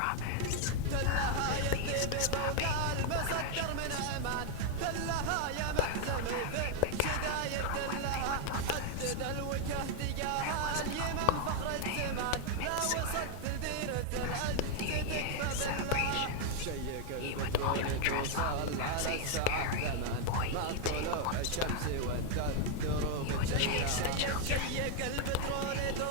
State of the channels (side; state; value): both; different; correlation 0.00